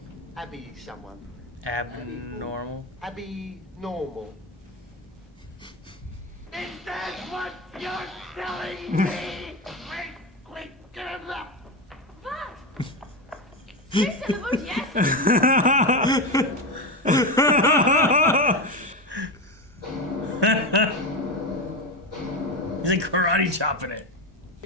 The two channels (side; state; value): both; normal; correlation 0.15